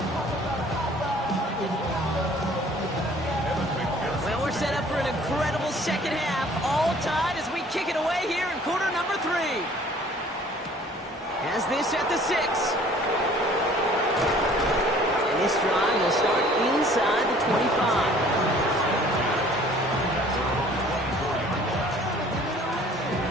Second half, all tied as we kick it away here in quarter number 3. Has this at the 6. And this drive will start inside the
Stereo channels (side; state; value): both; normal; correlation 0.53